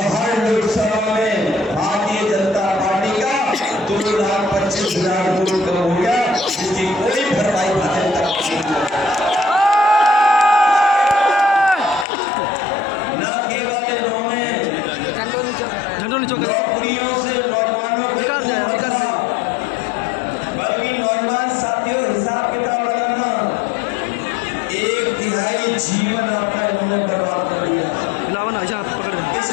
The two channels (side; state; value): right; drops out; at 12.1 s